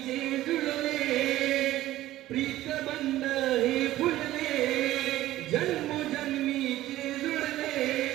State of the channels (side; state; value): left; quieter; 15.1 dB